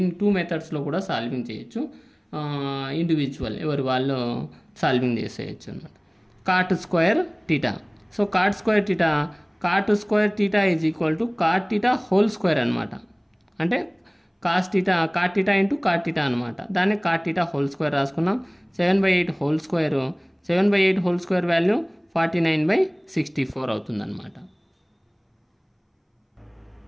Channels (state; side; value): identical; both; correlation 1.00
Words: 2 మెథడ్స్లో కూడా సాల్వింగ్ చేయొచ్చు. ఇండివిజువల్ ఎవరు వాళ్ళు సాల్వింగ్ చేసేయచ్చు అన్నమాట. Cot square theta. So cot square theta is equal to cot theta whole square అనమాట. అంటే cot theta into cot theta అనమాట. దాన్ని కాట్ టీటా హోల్ స్క్వేర్ రాసుకున్నాం. 7/8 whole square 7/8 whole square value 49/64 అవుతుంది అనమాట.